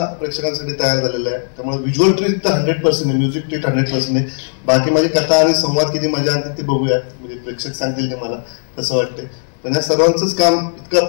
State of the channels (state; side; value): silent; right; 57 dB below the other